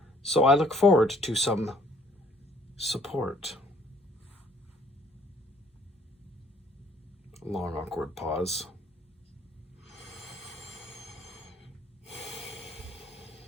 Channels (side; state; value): both; normal; correlation 0.60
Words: So I look forward to some support. Long, awkward pause.